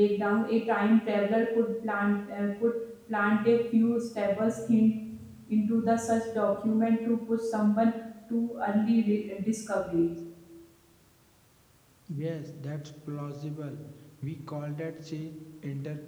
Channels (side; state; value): both; identical; correlation 1.00